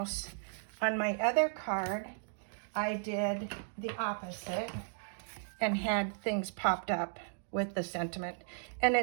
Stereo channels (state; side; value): silent; left; digital silence